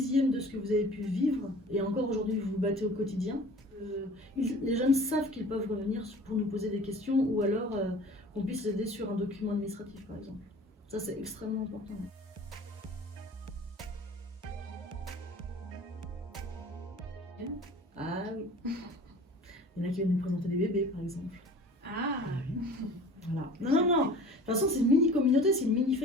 de ce que vous avez pu vivre, et encore aujourd'hui, vous vous battez au quotidien. Les jeunes savent qu'ils peuvent revenir pour nous poser des questions, ou alors qu'on puisse les aider sur un document administratif, par exemple. Ça, c'est extrêmement important. Ah oui. Il y en a qui viennent nous présenter des bébés, par exemple. Ah oui. Voilà. Non. De toute façon, c'est une mini-communauté, c'est une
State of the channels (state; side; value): normal; both; correlation 0.44